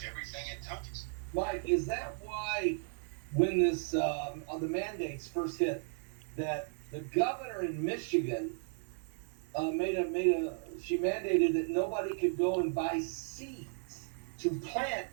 everything it touches. Mike, is that why when this the mandates first hit, that the governor in Michigan she mandated that nobody could go and buy seeds to plant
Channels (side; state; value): left; silent; 54 dB below the other